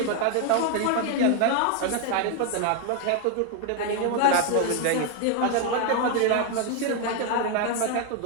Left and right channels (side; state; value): both; different; correlation 0.01